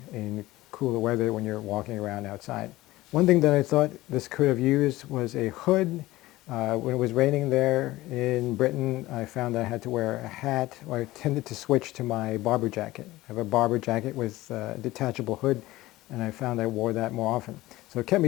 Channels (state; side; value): quieter; right; 17.9 dB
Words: in cooler weather when you're walking around outside. One thing that I thought this could have used was a hood. When it was raining there in Britain, I found I had to wear a hat, or I tended to switch to my barber jacket. I have a barber jacket with a detachable hood, and I found I wore that more often. So it kept